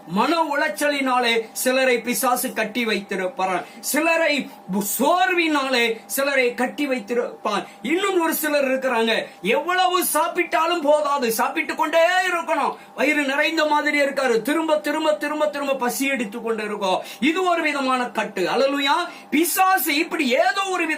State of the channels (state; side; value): identical; both; correlation 1.00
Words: மன உளைச்சலினாலே சிலரை பிசாசு கட்டி வைத்திருப்பார். சிலரை சோர்வினாலே சிலரை கட்டி வைத்திருப்பார். இன்னும் ஒரு சிலர் இருக்கிறாங்க, எவ்வளவு சாப்பிட்டாலும் போதாது, சாப்பிட்டுக் கொண்டே இருக்கணும், வயிறு நிறைந்த மாதிரி இருக்காரு, திரும்ப திரும்ப திரும்ப திரும்ப பசி எடுத்துக் கொண்டு இருக்கும். இது ஒரு விதமான கட்டு. அல்லேலூயா. பிசாசு இப்படி ஏதோ ஒரு